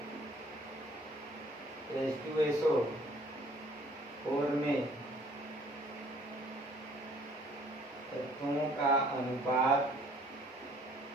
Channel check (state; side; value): normal; both; correlation 0.57